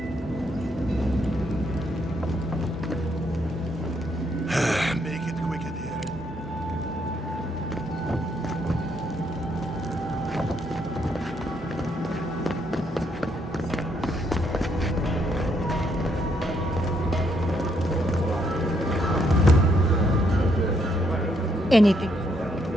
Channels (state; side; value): normal; both; correlation 0.74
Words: Make it quick, Aedyr. Anything.